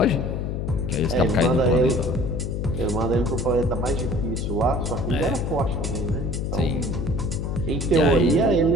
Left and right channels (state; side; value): noise; left; hum, 2 dB below the sound